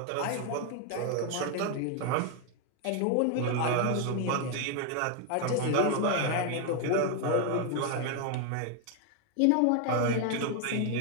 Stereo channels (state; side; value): different; both; correlation 0.01